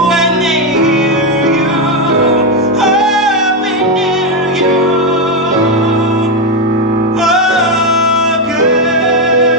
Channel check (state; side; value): normal; both; correlation 0.06